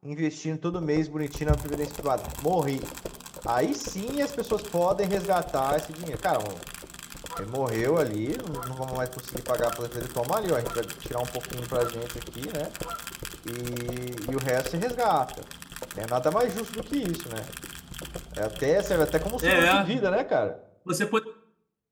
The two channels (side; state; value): both; identical; correlation 1.00